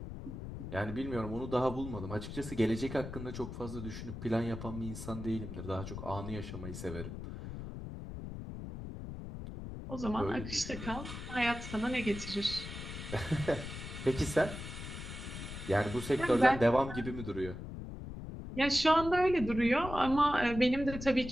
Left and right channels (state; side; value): noise; left; rumble, 9 dB below the sound